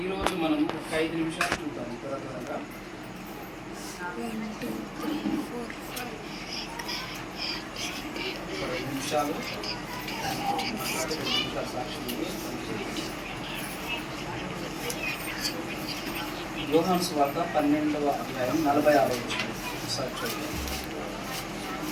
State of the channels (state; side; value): identical; both; correlation 1.00